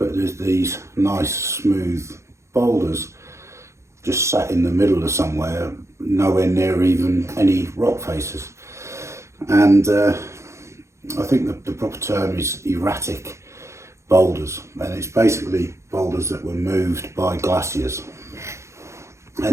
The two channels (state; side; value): late; left; 0.14 ms